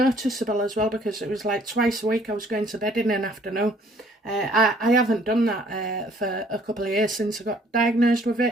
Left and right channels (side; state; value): both; normal; correlation 0.60